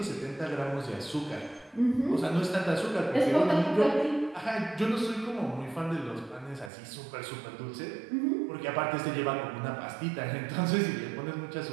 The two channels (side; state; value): left; drops out; at 6.7 s